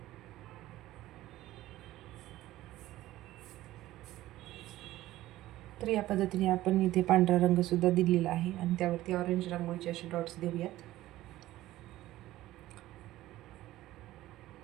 तर या पद्धतीने आपण इथे पांढरा रंगसुद्धा दिलेला आहे आणि त्यावरती ऑरेंज रांगोळीचे असे डॉट्स देऊयात.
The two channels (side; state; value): left; quieter; 15.6 dB